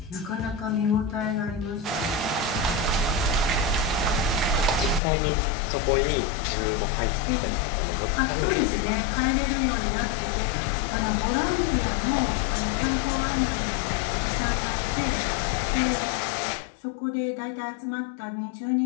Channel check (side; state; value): right; drops out; at 5.0 s